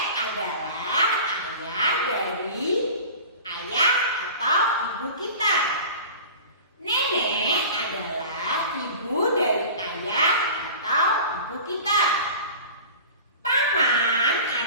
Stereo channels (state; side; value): inverted; both; correlation -0.38